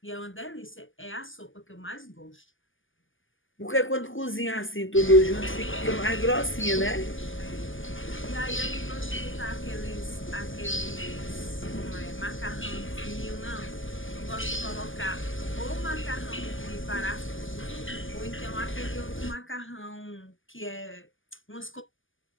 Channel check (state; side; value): late; right; 0.58 ms